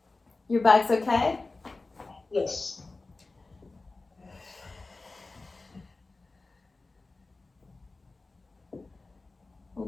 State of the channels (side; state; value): right; quieter; 3.5 dB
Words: Your back's okay? Yes.